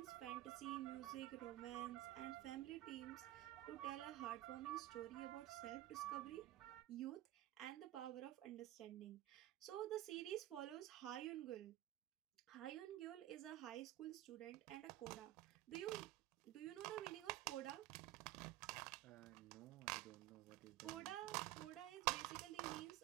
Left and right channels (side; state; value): left; quieter; 14.9 dB